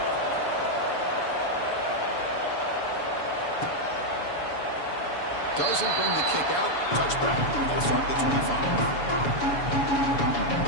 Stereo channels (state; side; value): late; right; 7.0 ms